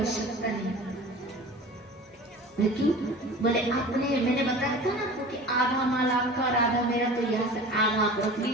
नहीं। क्यों? बोले आपने, मैंने बताया था ना आपको कि आधा माल आपका और आधा मेरा, तो यहाँ से आधा आप रख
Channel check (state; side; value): normal; both; correlation 0.39